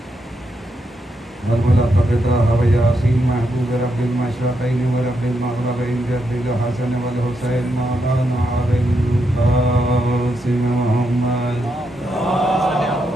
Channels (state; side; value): normal; both; correlation 0.82